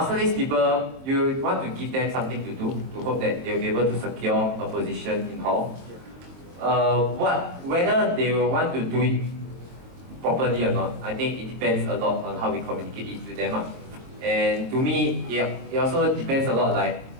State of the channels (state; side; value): late; left; 22 ms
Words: people, you want to give them something to do to hope that they'll be able to secure a position in hall. Whether they will want to do it properly or not, I think it depends a lot on how we communicate it to them. And to me, it also depends a lot like